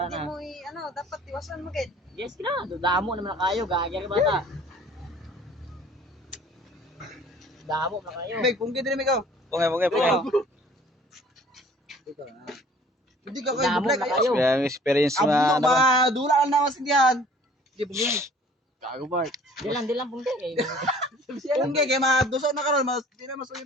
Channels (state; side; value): normal; both; correlation 0.51